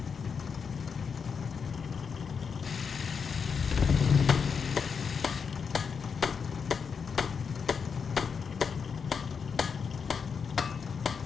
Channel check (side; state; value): right; quieter; 6.1 dB